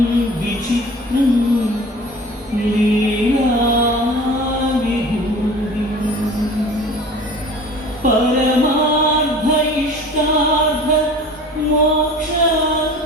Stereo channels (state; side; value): normal; both; correlation 0.42